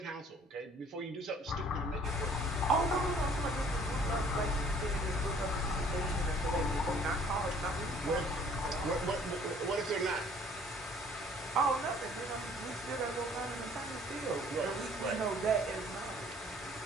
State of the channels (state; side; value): normal; both; correlation 0.56